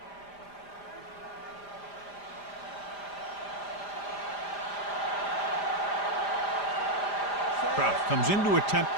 Kraft comes in to attempt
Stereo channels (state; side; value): late; right; 5.0 ms